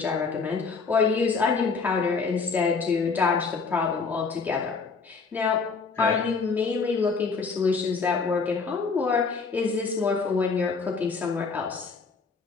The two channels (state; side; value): quieter; right; 4.8 dB